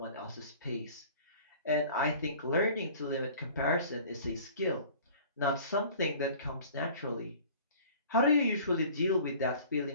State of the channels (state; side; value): inverted; both; correlation -0.47